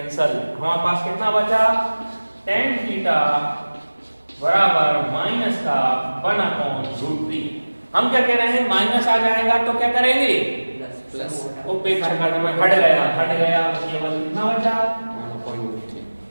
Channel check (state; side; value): inverted; both; correlation -1.00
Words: हमारे पास कितना बचा tan थीटा बराबर माइनस का 1/√3। हम क्या कह रहे हैं माइनस आ जाएगा तो क्या करेंगे प्लस, उपेक्षा करने में हट गया केवल कितना बचा 1/√3।